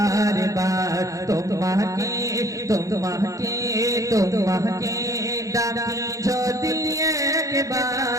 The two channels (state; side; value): late; left; 0.16 ms